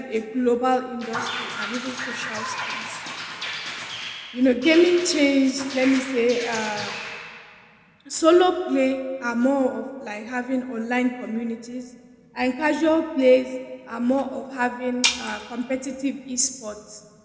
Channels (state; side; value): identical; both; correlation 1.00